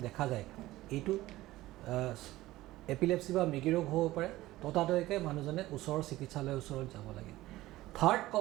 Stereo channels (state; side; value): quieter; left; 16.9 dB